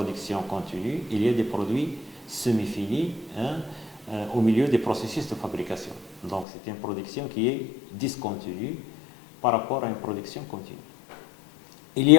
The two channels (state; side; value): drops out; right; at 6.5 s